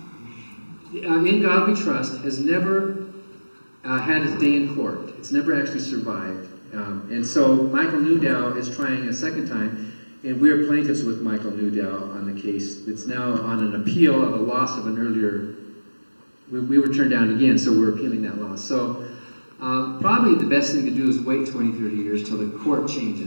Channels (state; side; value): inverted; both; correlation -1.00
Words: In God We Trust has never had its day in court. It's never actually survived. And so Michael Newdow is trying a second time, and we're plaintiffs with Michael Newdow on the case. It's now on an appeal of a loss of an earlier, we were turned down again, so we're appealing that loss. So probably the best thing to do is wait 20, 30 years till the court